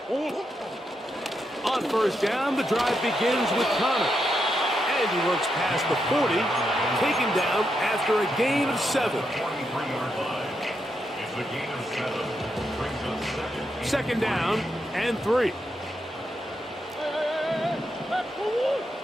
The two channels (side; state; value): both; normal; correlation 0.83